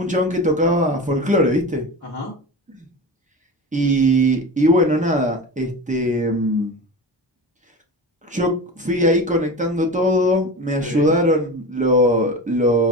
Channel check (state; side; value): normal; both; correlation 0.29